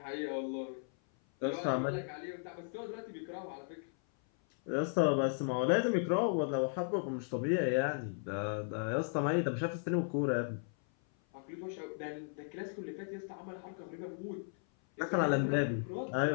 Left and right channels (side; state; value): right; silent; 54 dB below the other